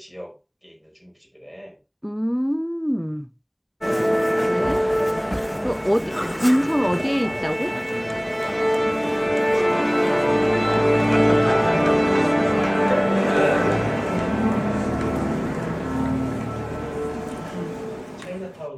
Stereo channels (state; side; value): identical; both; correlation 1.00